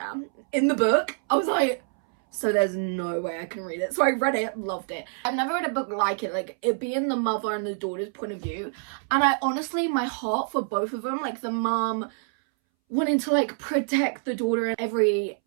in the book. I was like, so there's no way I can read it. So I read it, loved it. I've never read a book like it, like it being the mother and the daughter's point of view. And I honestly, my heart for both of them, like the mom wanting to like protect the daughter in every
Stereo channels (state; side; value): silent; left; 61 dB below the other